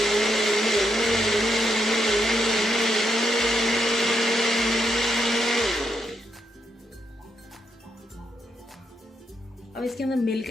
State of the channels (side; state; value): both; normal; correlation 0.79